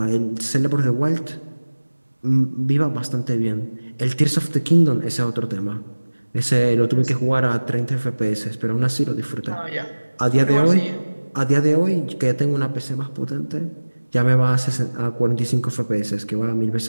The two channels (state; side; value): inverted; both; correlation -1.00